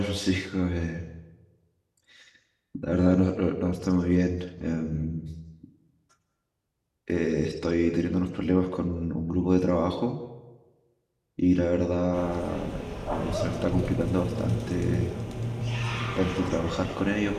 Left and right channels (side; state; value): both; identical; correlation 1.00